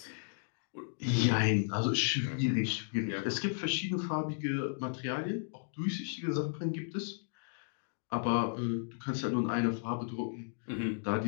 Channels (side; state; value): right; silent; digital silence